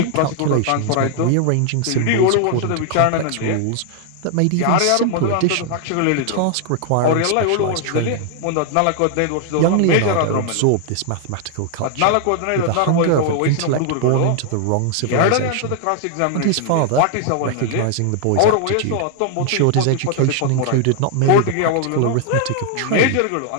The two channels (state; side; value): different; both; correlation 0.00